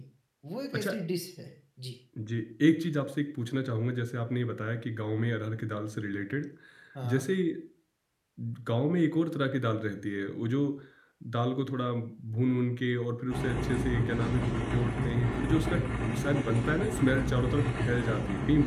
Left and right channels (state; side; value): identical; both; correlation 1.00